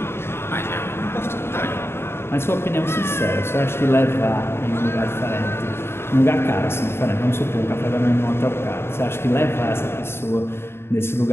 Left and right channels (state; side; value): late; right; 0.12 ms